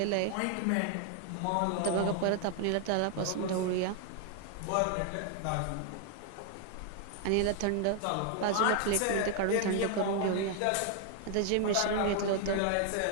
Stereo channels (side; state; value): both; different; correlation 0.00